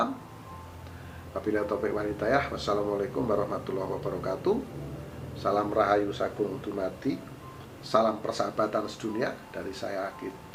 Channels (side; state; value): both; identical; correlation 1.00